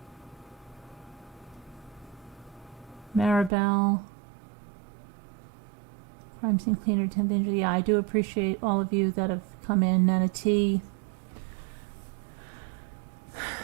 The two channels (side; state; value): left; drops out; at 3.5 s